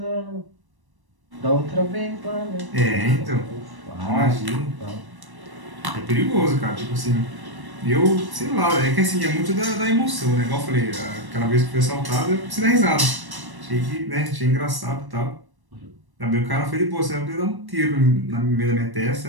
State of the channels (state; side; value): late; left; 1.1 ms